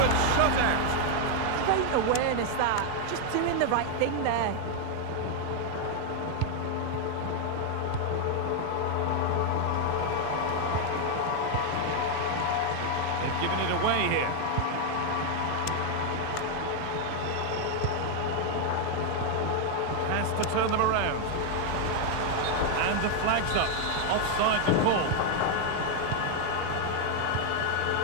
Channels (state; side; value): different; both; correlation 0.00